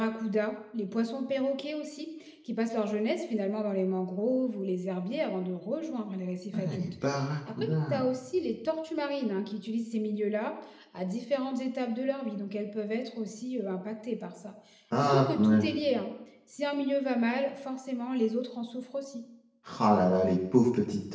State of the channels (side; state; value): both; identical; correlation 1.00